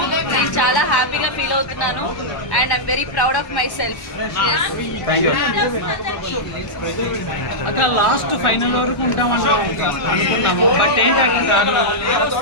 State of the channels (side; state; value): right; late; 1.1 ms